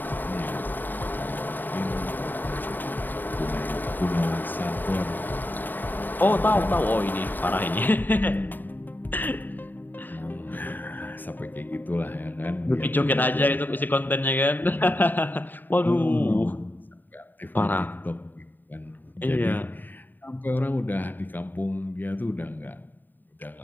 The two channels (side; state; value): right; late; 0.090 ms